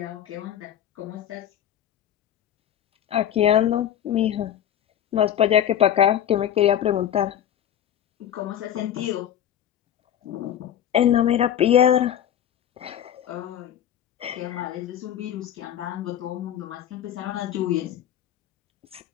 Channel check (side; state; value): right; quieter; 10.5 dB